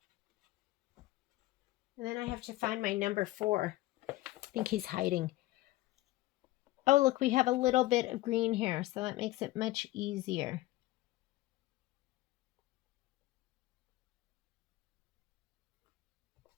And then I have to find my number 4. I think he's hiding. Oh, look, we have a little bit of green here, so that makes it much easier.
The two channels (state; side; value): quieter; right; 17.7 dB